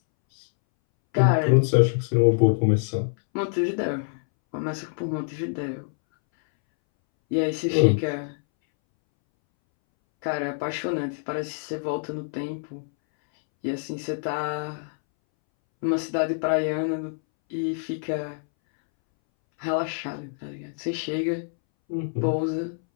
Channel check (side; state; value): right; silent; 61 dB below the other